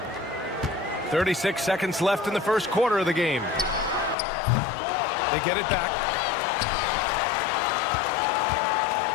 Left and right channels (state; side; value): drops out; right; at 4.2 s